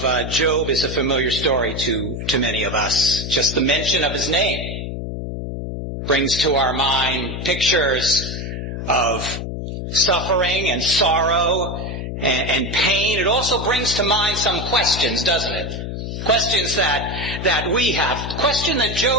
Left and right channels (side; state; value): left; noise; hum, 6 dB below the sound